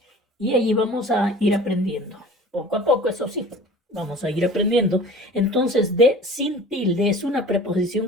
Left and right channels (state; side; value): normal; both; correlation 0.43